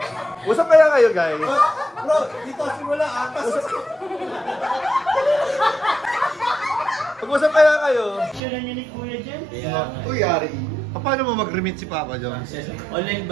Usap kaya kayo, guys? Bro, dito simula atas. Pag-usap kaya kayo? Sure niyo ni Kuya dyan? Uy, Yari. Paano mo mag-remit si Papa Jones? Online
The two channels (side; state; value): left; drops out; at 8.4 s